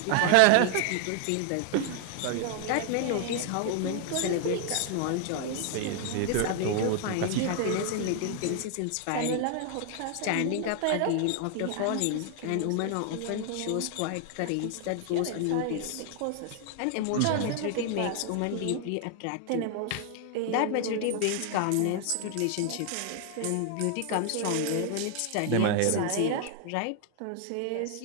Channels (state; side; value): different; both; correlation 0.00